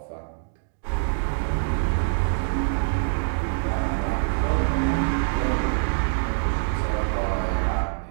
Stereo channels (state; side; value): silent; left; digital silence